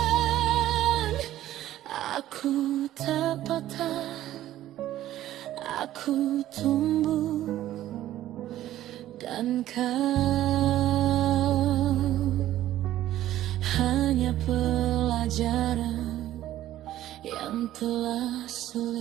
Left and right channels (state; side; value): quieter; left; 13.5 dB